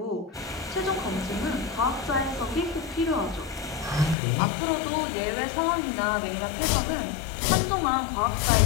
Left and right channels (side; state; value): right; drops out; at 4.2 s